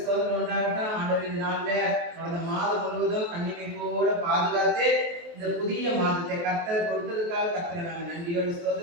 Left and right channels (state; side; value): late; left; 23 ms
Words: உண்டாகட்டும். ஆண்டவர் இந்த நாள்ல கடந்த மாதம் முழுவதும் கண்ணிமைப்போட பாதுகாத்து இந்த புதிய மாதத்தை கர்த்தர் கொடுத்ததுக்காக கர்த்தரை நாங்கள் நன்றியோடு